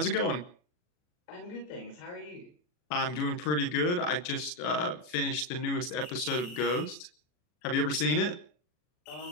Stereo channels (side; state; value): right; late; 40 ms